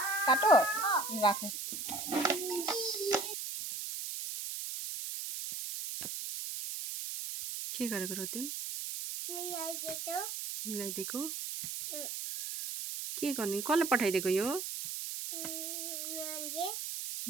काटो राख के गरेको र तिमी मिलाइदिएको के गर्ने कसले पठाइदिएको यो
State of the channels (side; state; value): right; noise; hiss, 5 dB below the sound